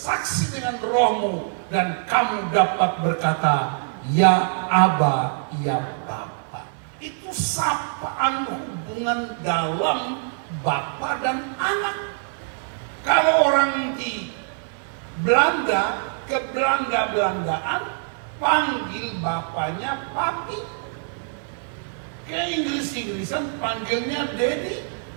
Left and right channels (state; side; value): silent; left; 56 dB below the other